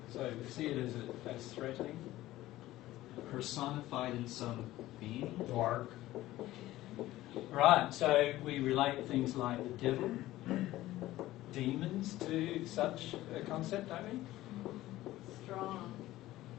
So we see it as threatening. Personified in some being. Dark. Right, so we relate things like the devil, demons to such a concept, don't we? Strong.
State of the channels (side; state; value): right; quieter; 16.0 dB